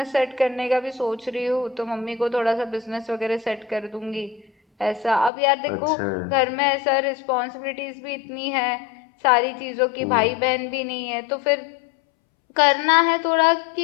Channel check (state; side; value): drops out; right; at 5.3 s